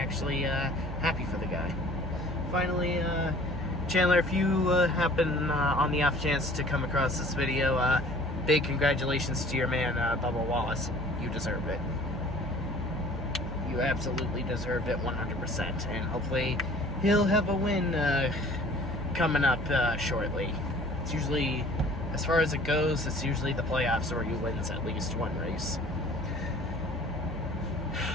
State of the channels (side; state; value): both; normal; correlation 0.50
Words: happy for the guy. Finally, Chandler, if you happen on the off chance to come across this video, big congratulations to your man, Bubba Wallace. You deserve it. You absolutely deserve it 100%, and hopefully he'll have a win coming up shortly. It's usually, as far as it goes, it's usually the playoffs where he wins at least one race.